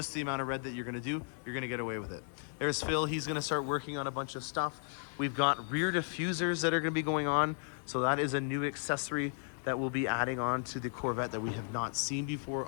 the amount of red that you're going to do, you're going to get away with it. There's Phil. He's going to start working on a bunch of stuff. We've got rear diffusers that are going to be going on, so that is a new accessory that we'll be adding on to the Corvette that we have not seen before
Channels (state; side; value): silent; right; 55 dB below the other